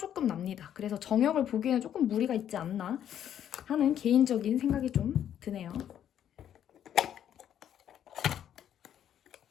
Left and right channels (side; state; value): right; quieter; 10.0 dB